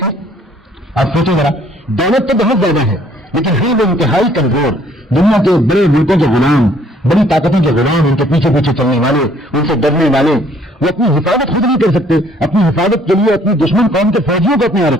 ہے؟ آپ سوچیں ذرا، دولت تو بہت زیادہ ہے لیکن ہیں وہ انتہائی کمزور، دنیا کے بڑے ملکوں کے غلام، بڑی طاقتوں کے غلام، ان کے پیچھے پیچھے چلنے والے، ان سے ڈرنے والے، وہ اپنی حفاظت خود نہیں کر سکتے، اپنی حفاظت کے لیے اپنی دشمن قوم کے فوجیوں کو اپنے یہاں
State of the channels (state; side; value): normal; both; correlation 0.61